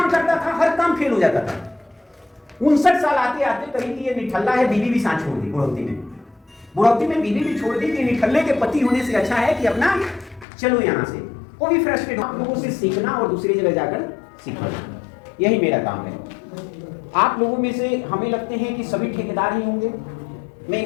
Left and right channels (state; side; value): drops out; right; at 10.5 s